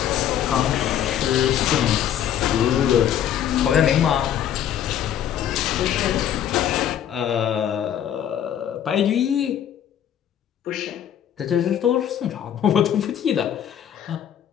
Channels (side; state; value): right; quieter; 10.1 dB